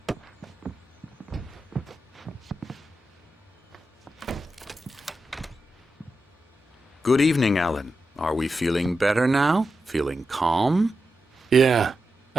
Good evening, Alan. Are we feeling better now? Feeling calm? Yeah.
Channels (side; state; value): both; normal; correlation 0.89